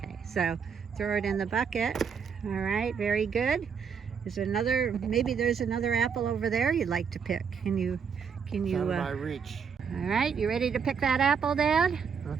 So throw it in the bucket. All right, very good. Is there another, maybe there's another apple over there you'd like to pick. Can you It's out of my reach. All right, you ready to pick that apple, Dad?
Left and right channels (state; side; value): quieter; left; 6.6 dB